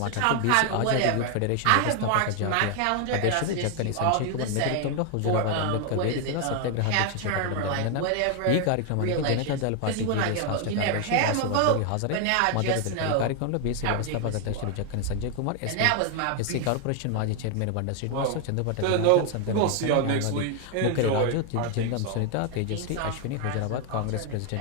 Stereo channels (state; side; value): different; both; correlation 0.00